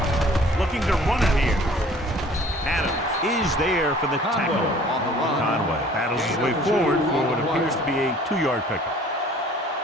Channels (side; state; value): both; normal; correlation 0.52